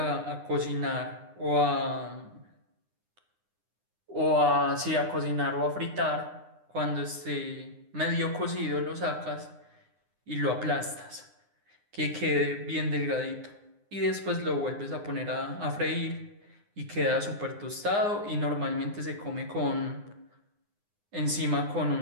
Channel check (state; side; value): late; left; 9.7 ms